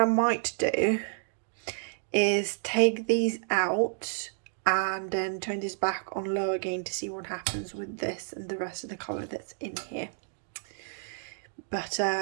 might do is take these out and then turn this back on low again to see what happens with this and the rest of the colour that's in here. But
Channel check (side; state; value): left; silent; digital silence